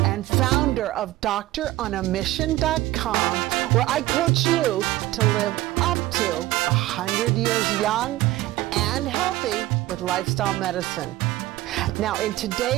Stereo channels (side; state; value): left; quieter; 16.7 dB